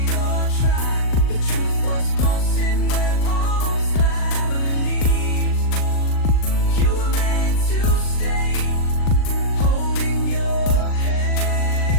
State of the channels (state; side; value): late; right; 39 ms